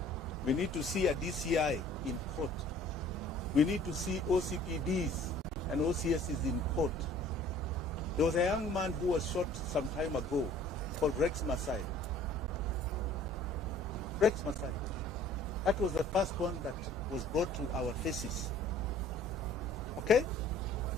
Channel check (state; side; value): normal; both; correlation 0.52